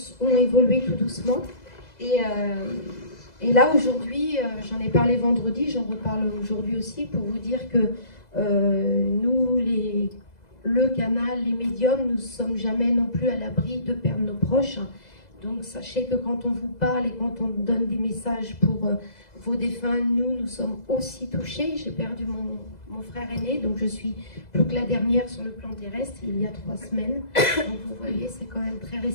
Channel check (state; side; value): late; right; 2.0 ms